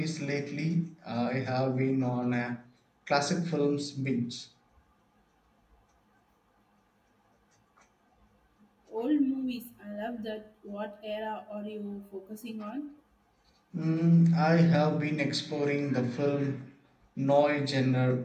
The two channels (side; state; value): both; identical; correlation 1.00